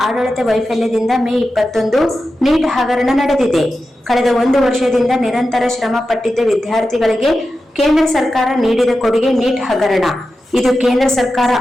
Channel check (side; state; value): both; normal; correlation 0.92